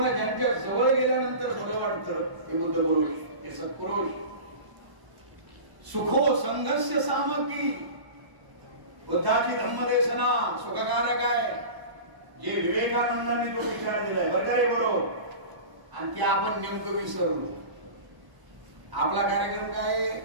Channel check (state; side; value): late; left; 1.1 ms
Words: ज्यांच्या जवळ गेल्यानंतर बरं वाटतं हे बुद्ध पुरुष, हे सत्पुरुष. सुखो संघस्य सामग्री. बुद्धाची धम्मदेशना सुखकारक आहे, जे विवेकानंदांनी तो विचार दिलाय बरं का रे बरोबर. आणि ते आपण नेमकं विसरलो. आपला कार्यक्रम काय